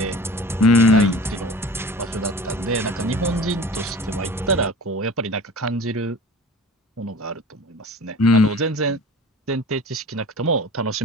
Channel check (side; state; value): both; normal; correlation 0.40